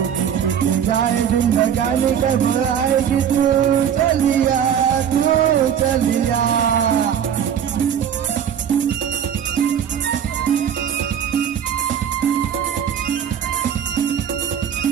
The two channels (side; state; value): left; quieter; 8.7 dB